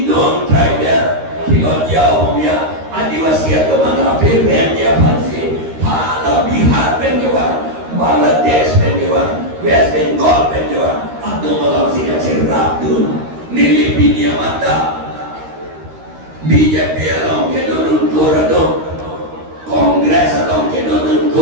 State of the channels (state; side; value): late; left; 13 ms